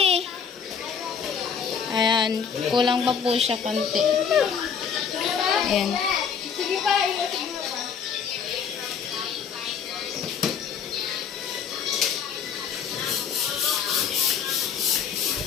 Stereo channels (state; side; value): quieter; right; 7.0 dB